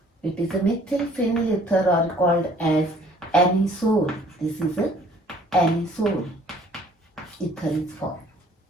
It is a methyl phenyl ether or called as anisole. This is a anisole ether is formed.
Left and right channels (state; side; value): normal; both; correlation 0.57